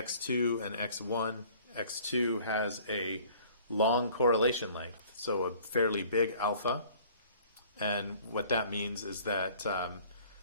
and x1. x2 has a long correlation length, so a fairly big alpha. And what that means is that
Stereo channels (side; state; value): both; inverted; correlation -0.52